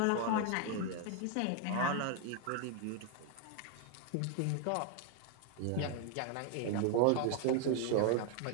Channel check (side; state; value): both; different; correlation 0.00